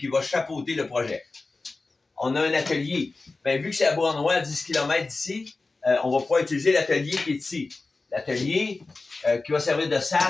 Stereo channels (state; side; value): quieter; right; 3.6 dB